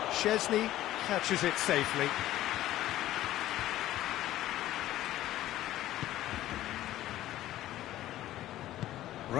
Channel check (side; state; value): right; quieter; 14.3 dB